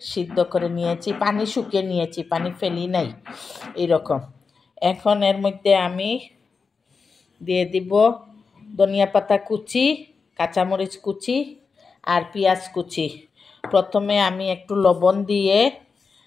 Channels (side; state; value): right; quieter; 5.0 dB